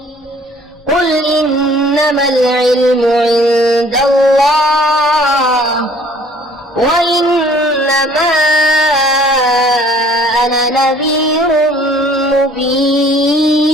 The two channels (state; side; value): normal; both; correlation 0.56